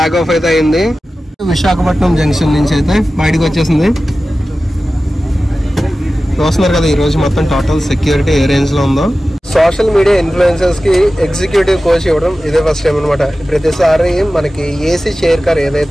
ఆఫ్ అయితే అయింది. విశాఖపట్నం జంక్షన్ నుంచి అయితే బయటకు వచ్చేసింది. చూస్తున్నారు కదా ఈ రోజు మొత్తం టోటల్ సెక్యూరిటీ ఏ రేంజ్ లో ఉందో. సోషల్ మీడియా ఇన్ఫ్లుయెన్సర్స్ కి ఎగ్జిక్యూటివ్ కోచ్ ఇవ్వడం ఇదే ఫస్ట్ టైం అనమాట. ప్రతిసారి మనకి ఏసీ చైర్ కార్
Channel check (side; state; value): both; normal; correlation 0.95